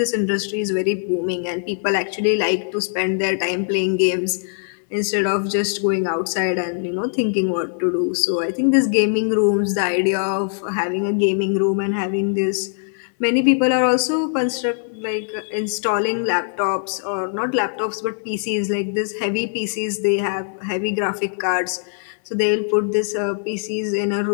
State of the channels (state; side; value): silent; right; 64 dB below the other